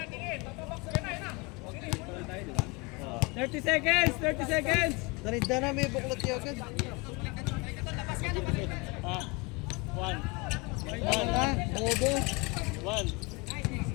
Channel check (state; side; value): quieter; right; 27.1 dB